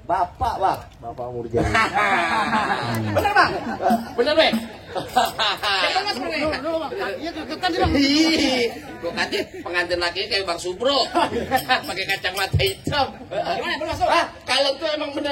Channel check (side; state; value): both; identical; correlation 1.00